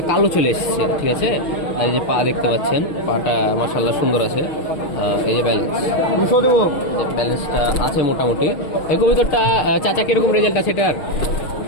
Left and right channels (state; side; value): late; right; 6.3 ms